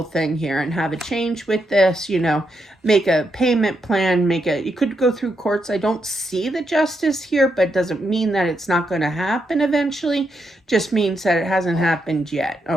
thing here and have a change with this, make a payment plan, you could go through courts. I don't see the justice here, but it doesn't mean that it's not going to happen eventually. Just means that it hasn't happened yet.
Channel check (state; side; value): normal; both; correlation 0.81